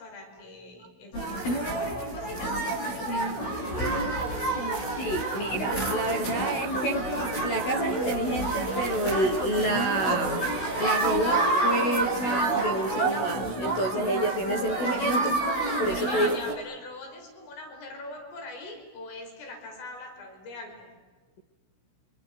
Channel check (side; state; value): right; late; 16 ms